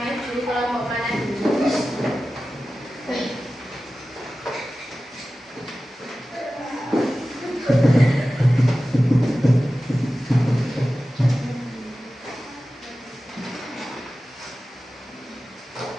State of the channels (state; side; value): normal; both; correlation 0.95